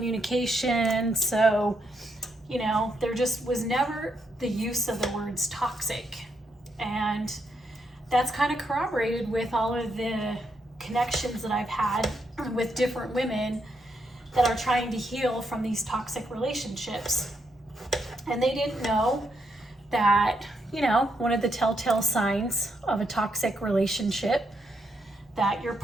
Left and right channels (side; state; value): both; normal; correlation 0.79